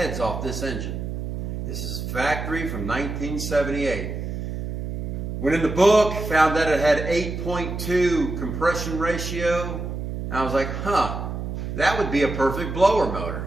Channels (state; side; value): noise; right; hum, 5 dB below the sound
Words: off this engine. This is factory from 1978. Went in the book, found that it had 8.2 compression ratio. And I was like, that would be a perfect blower motor.